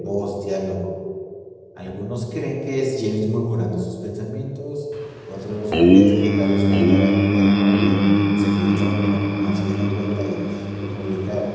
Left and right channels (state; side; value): identical; both; correlation 1.00